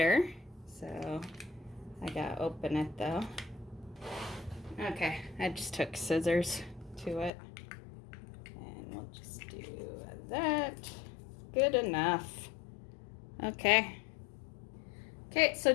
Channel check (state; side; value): drops out; right; at 7.3 s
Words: So I gotta open it though. Okay, I just took scissors to it. We'll just do that. Good enough. Okay. Okay, so